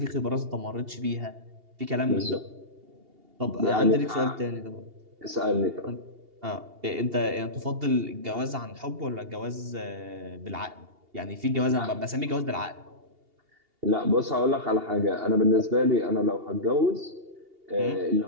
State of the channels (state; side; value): late; left; 2.8 ms